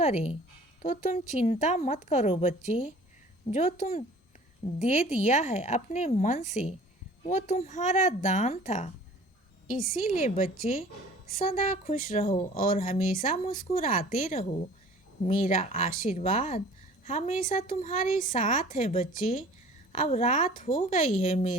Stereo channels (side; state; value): both; normal; correlation 0.48